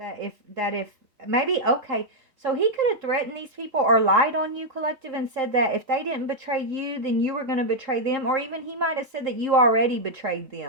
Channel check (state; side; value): late; left; 3.7 ms